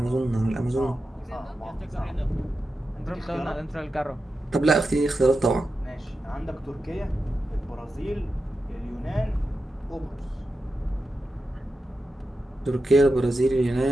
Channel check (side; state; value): both; normal; correlation 0.90